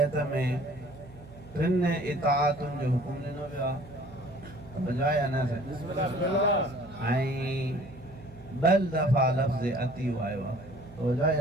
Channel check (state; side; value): noise; right; hum, 20 dB below the sound